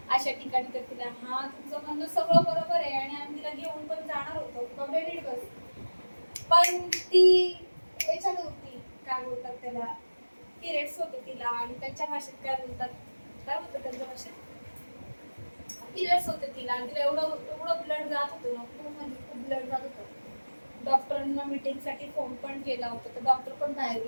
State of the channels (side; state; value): both; inverted; correlation -1.00